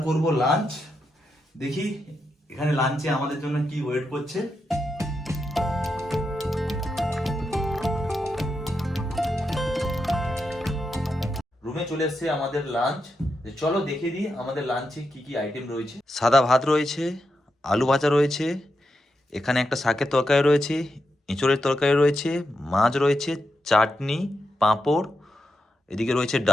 করব লাঞ্চ। দেখি এখানে লাঞ্চে আমাদের জন্য কি ওয়েট করছে। রুমে চলে এসেছে আমাদের লাঞ্চ। চলো দেখে দিই আমাদের লাঞ্চে কি কি আইটেম রয়েছে। সাদা ভাত রয়েছে, আলু ভাজা রয়েছে, এখানে একটা শাকের তরকারি রয়েছে, এঁচড়ের তরকারি রয়েছে, মাছ রয়েছে, চাটনি, পাঁপড়, এদিকে রয়েছে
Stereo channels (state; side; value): normal; both; correlation 0.86